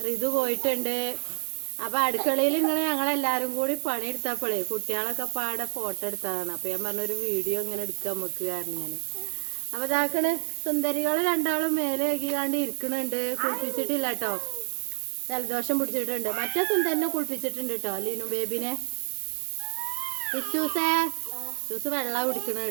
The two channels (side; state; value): left; silent; digital silence